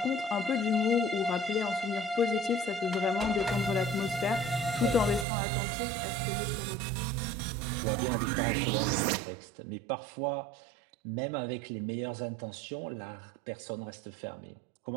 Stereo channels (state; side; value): drops out; left; at 5.2 s